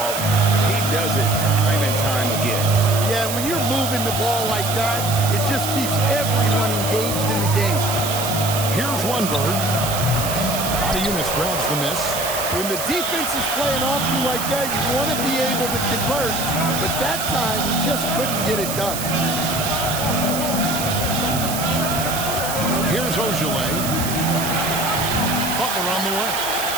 He does it time and time again. Yeah, when you're moving the ball like that, it just keeps everyone engaged in the game. Here's Lundberg. Yunus grabs the miss. When the defense is playing off you like that, you want to be able to convert, but that time he just couldn't get it done. Here's Ojale. Butler on the way.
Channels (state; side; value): noise; right; hiss, 5 dB below the sound